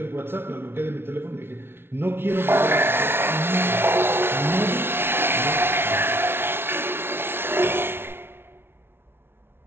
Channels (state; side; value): late; left; 0.11 ms